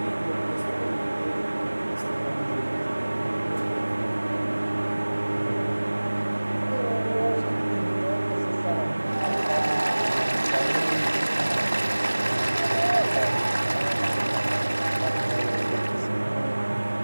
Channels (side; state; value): both; inverted; correlation -1.00